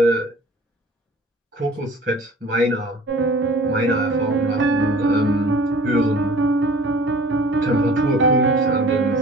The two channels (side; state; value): both; normal; correlation 0.47